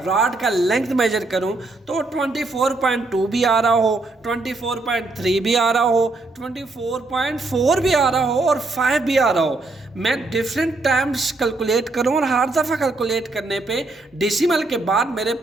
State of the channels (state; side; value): quieter; left; 3.2 dB